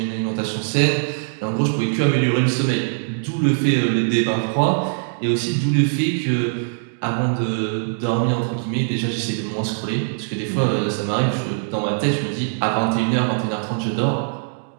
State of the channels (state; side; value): silent; left; digital silence